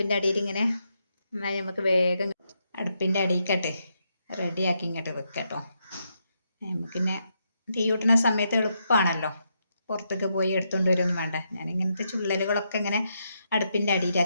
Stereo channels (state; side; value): inverted; both; correlation -0.80